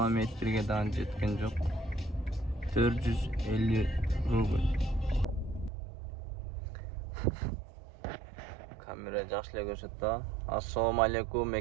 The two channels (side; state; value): left; drops out; at 5.7 s